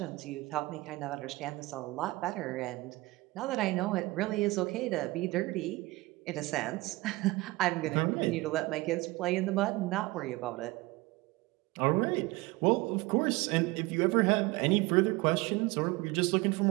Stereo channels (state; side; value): quieter; left; 21.5 dB